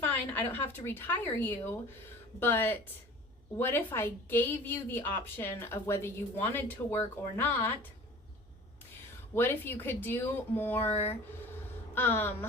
I don't have to retire you, but what if I gave you the option of whether you wanted to work or not? What if you could do more,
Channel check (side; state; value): both; normal; correlation 0.43